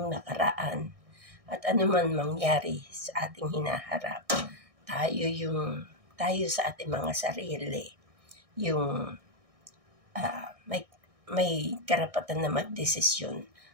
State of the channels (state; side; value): late; left; 1.6 ms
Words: nakaraan at ano man mangyari sa ating hinaharap, tayo sa ating mga sarili, yung may karapatan na magdesisyon